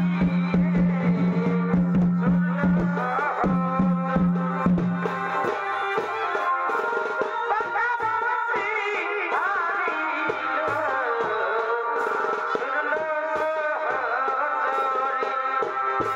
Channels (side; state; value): both; identical; correlation 1.00